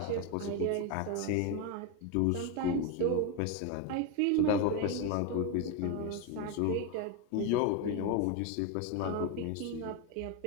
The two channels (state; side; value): different; both; correlation 0.02